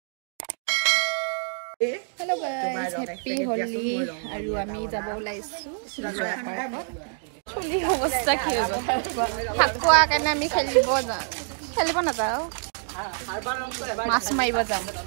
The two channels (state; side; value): silent; left; 58 dB below the other